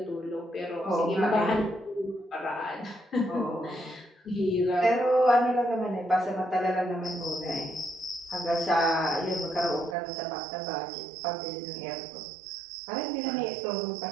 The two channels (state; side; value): drops out; left; at 10.0 s